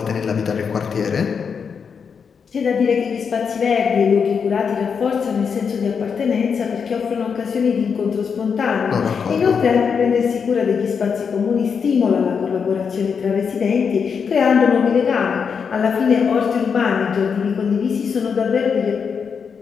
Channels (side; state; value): right; quieter; 6.3 dB